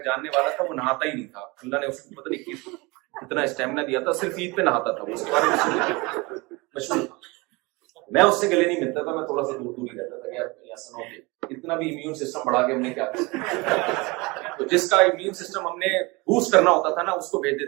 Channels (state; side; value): quieter; left; 25.3 dB